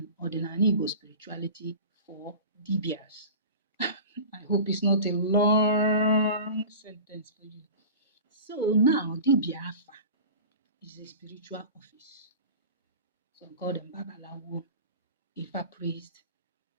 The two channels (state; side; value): inverted; both; correlation -0.36